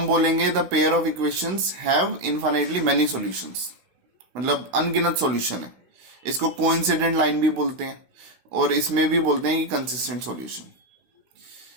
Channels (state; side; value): late; left; 16 ms